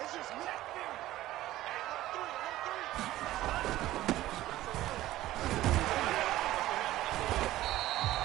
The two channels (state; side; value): quieter; left; 15.3 dB